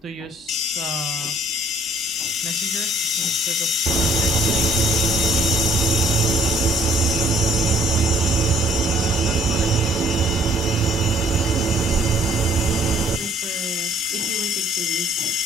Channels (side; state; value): both; normal; correlation 0.59